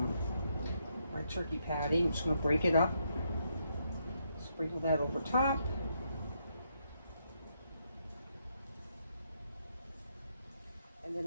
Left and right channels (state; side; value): inverted; both; correlation -0.77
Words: patty. I'm just going to break it up, sprinkle that over top. And then